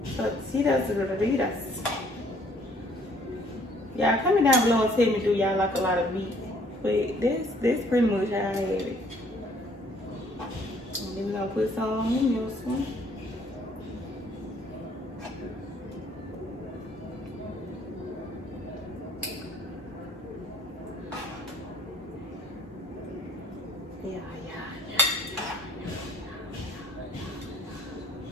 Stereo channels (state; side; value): normal; both; correlation 0.60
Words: Tortillas burritos. Y'all comment down below and tell me, do y'all like a lot of meat? But that's pretty much how I have it. And then we're gonna put some on in this one.